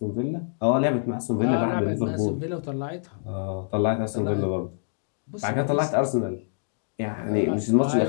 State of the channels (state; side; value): silent; right; digital silence